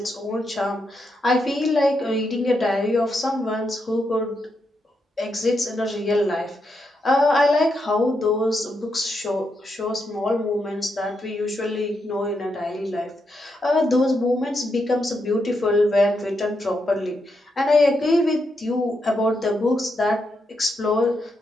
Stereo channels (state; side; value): normal; both; correlation 0.82